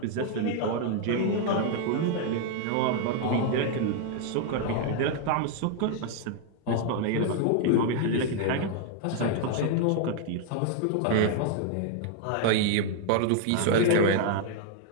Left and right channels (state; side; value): different; both; correlation 0.00